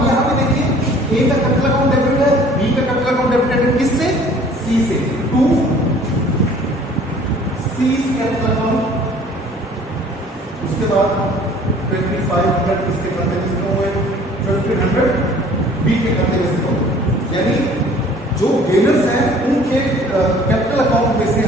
यहां पे देखिए ए का कैपिटल अकाउंट डेबिट है, बी का कैपिटल अकाउंट डेबिट है किससे, सी से, टू सी कैपिटल अकाउंट। उसके बाद 2500 इसके खाते में से हुए, 1500 बी के खाते में से हुए। यानी जो गेनर्स हैं उनके कैपिटल अकाउंट में से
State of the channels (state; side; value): normal; both; correlation 0.52